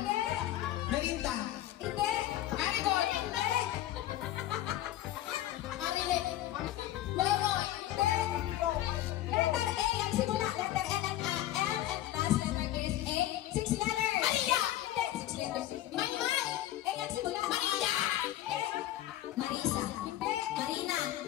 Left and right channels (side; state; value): right; quieter; 13.8 dB